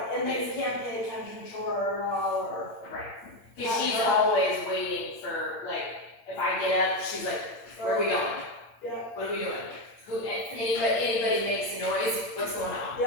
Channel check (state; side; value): late; right; 8.7 ms